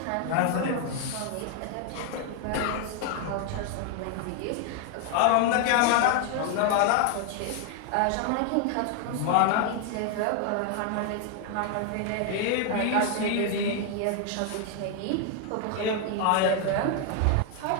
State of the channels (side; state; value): both; different; correlation 0.00